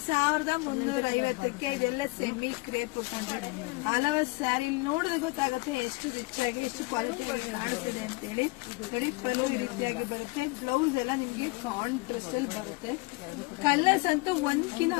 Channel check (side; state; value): right; quieter; 25.3 dB